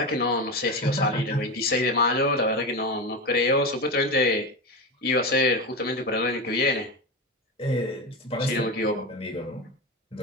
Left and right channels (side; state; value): both; normal; correlation 0.19